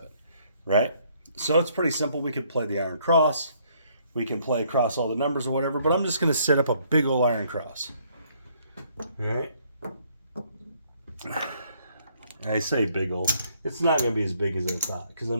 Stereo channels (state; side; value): inverted; both; correlation -0.67